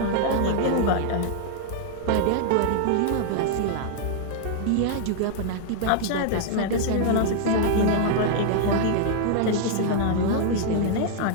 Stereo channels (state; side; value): different; both; correlation 0.00